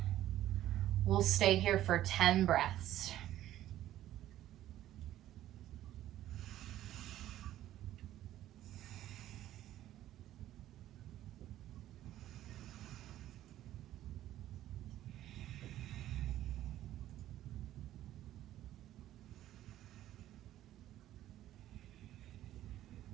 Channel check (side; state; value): left; quieter; 13.3 dB